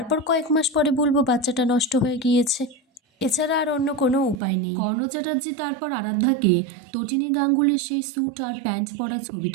কয়েক মাস পরে বলবো বাচ্চাটা নষ্ট হয়ে গিয়েছে। এছাড়া আর অন্য কোনো উপায় নেই। কর্ণ চ্যাটার্জি তারপর আরাধ্যাকে তটিনী গাঙ্গুলির সেই স্যুট আর প্যান্ট পরা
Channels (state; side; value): drops out; left; at 4.4 s